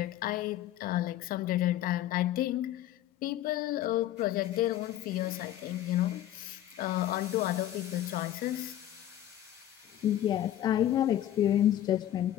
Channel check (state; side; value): quieter; right; 12.6 dB